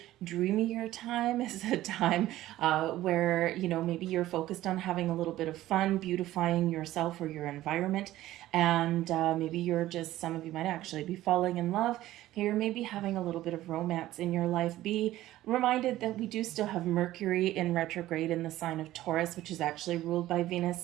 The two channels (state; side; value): quieter; left; 15.1 dB